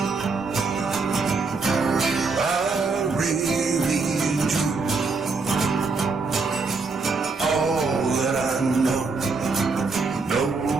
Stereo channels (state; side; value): quieter; left; 4.2 dB